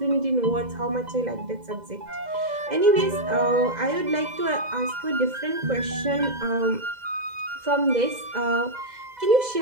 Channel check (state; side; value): late; left; 2.0 ms